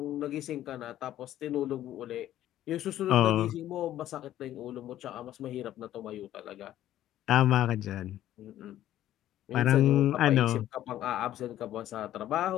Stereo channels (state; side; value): quieter; right; 12.8 dB